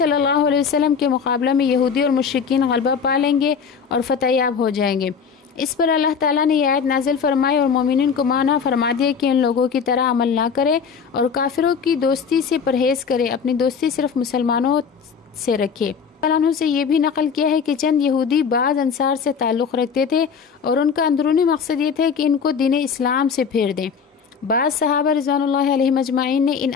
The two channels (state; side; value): quieter; right; 6.3 dB